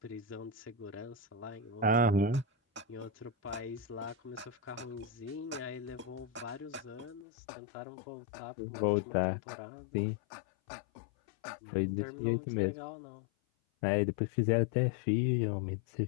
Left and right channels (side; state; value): right; drops out; at 7.2 s